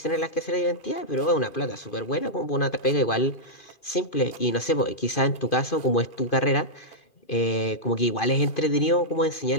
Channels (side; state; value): right; late; 2.5 ms